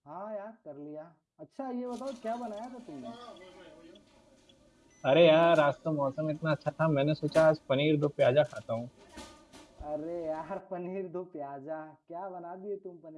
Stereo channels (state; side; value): identical; both; correlation 1.00